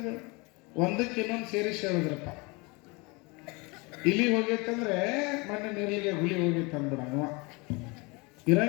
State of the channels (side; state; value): right; quieter; 27.4 dB